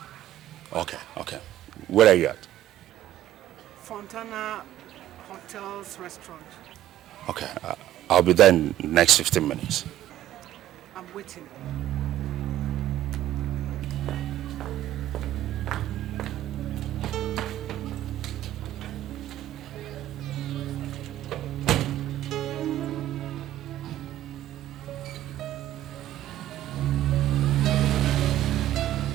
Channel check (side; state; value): left; quieter; 13.2 dB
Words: Okay. Where are you at? Fontana Hotels Restaurant. Okay, I'll be there in the next 15 minutes. I'm waiting.